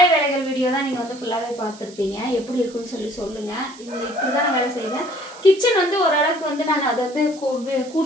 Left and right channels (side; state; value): right; noise; hiss, 21 dB below the sound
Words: வேலைகள் வீடியோ தான் நீங்கள் வந்து ஃபுல்லாகவே பார்த்துருப்பீங்க. எப்படி இருக்குன்னு சொல்லுங்கள். இப்படி தான் நான் வேலை செய்வேன். கிச்சன் வந்து ஓரளவுக்கு வந்து நான் அதை வந்து